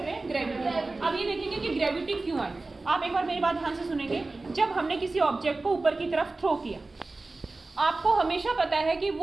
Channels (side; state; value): left; quieter; 3.3 dB